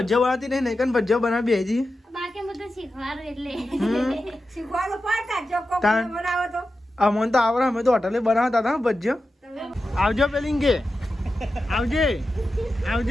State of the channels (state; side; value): normal; both; correlation 0.91